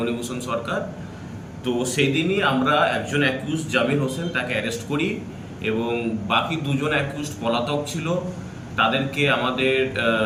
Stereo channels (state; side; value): identical; both; correlation 1.00